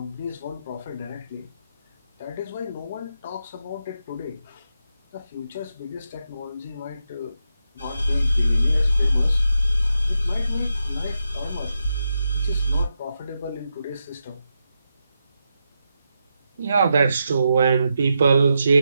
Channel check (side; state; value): both; inverted; correlation -0.85